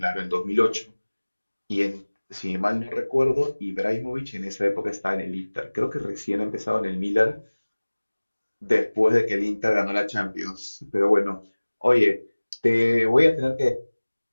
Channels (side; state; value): both; inverted; correlation -1.00